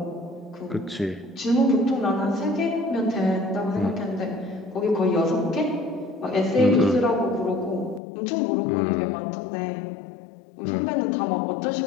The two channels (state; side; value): drops out; right; at 8.0 s